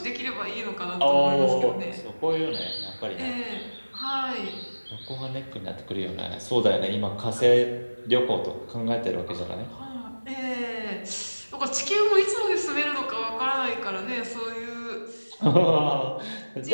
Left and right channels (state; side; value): inverted; both; correlation -1.00